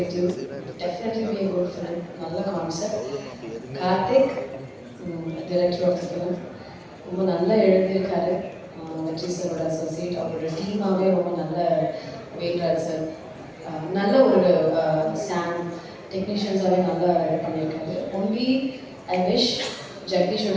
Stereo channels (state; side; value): identical; both; correlation 1.00